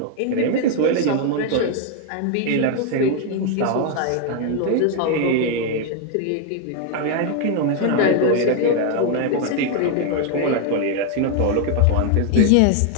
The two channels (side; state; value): both; different; correlation 0.01